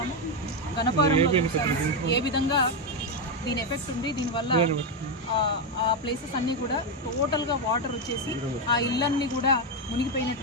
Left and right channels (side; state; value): both; normal; correlation 0.06